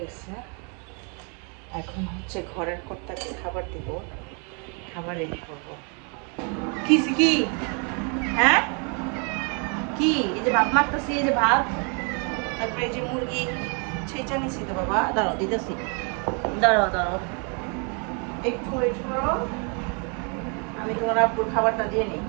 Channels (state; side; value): quieter; left; 36.7 dB